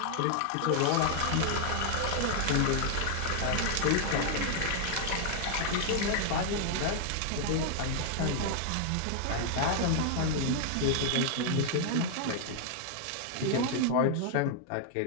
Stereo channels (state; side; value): different; both; correlation 0.00